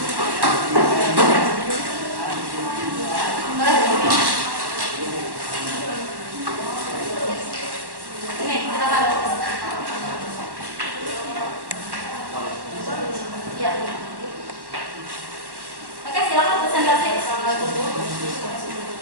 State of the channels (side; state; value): left; late; 1.1 ms